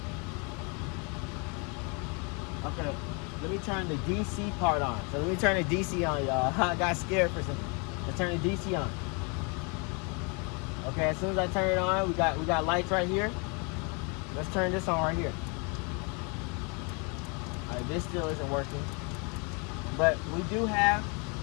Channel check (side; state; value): right; quieter; 33.2 dB